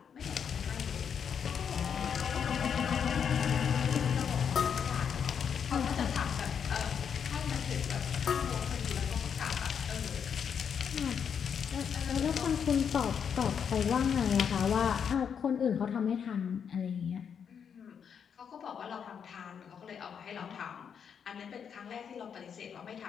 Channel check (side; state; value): right; quieter; 7.4 dB